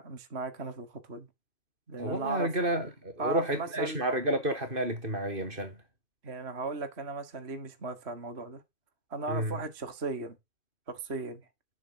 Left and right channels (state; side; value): late; left; 2.5 ms